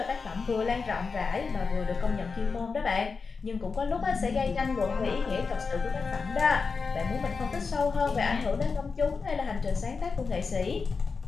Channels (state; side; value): quieter; right; 4.8 dB